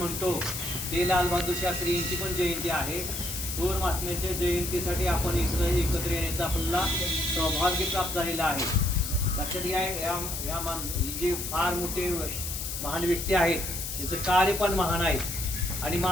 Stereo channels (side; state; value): left; noise; hiss, 5 dB below the sound